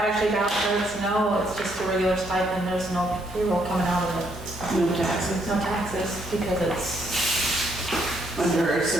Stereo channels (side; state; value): both; normal; correlation 0.72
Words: vouchers, no, it's just a regular stipend, there's no payroll coming out of it. No taxes. No taxes, because it's, Under a